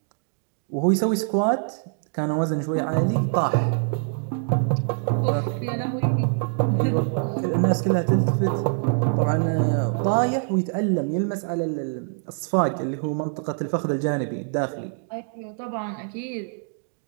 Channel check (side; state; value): left; silent; 62 dB below the other